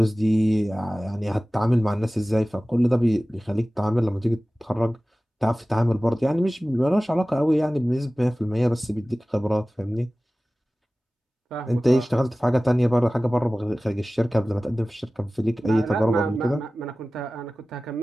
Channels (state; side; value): normal; both; correlation 0.97